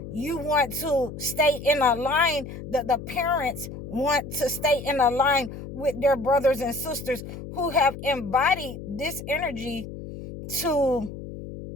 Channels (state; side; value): noise; left; hum, 10 dB below the sound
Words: you want to stay in a line, that the parents want to stay in a line with their brothers and sisters who have embodied this energy to